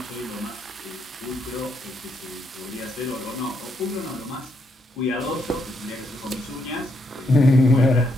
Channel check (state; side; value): normal; both; correlation 0.77